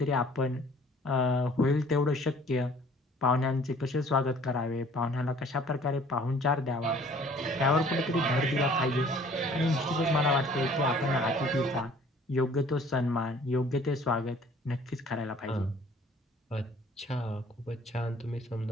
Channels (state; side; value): normal; both; correlation 0.54